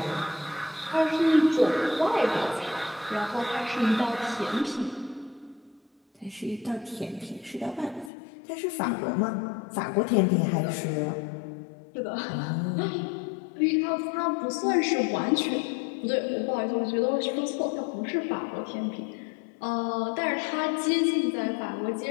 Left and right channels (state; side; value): drops out; right; at 8.1 s